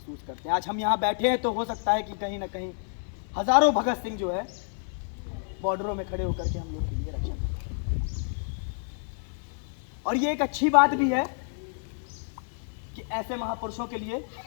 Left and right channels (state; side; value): silent; right; digital silence